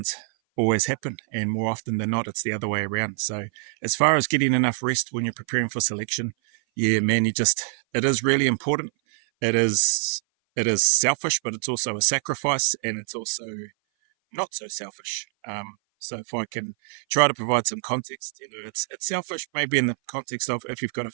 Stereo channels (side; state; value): left; silent; 58 dB below the other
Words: always happen, and more often than not it's the other way around. So as far as getting enough rest when you're preparing for selection, yeah man, it is really important. It is selfish, but it's also a sacrifice, and it's also not so selfish. So if I can try to provide some context, it's selfish maybe in the context of if you've got a